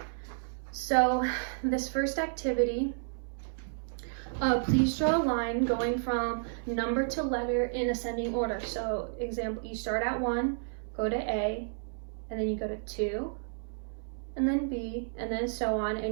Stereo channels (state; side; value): silent; left; 57 dB below the other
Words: So, this first activity, please draw a line going from number to letter in ascending order. So, example, you start at 1, go to A, and then you go to 2, and then B, and then so on,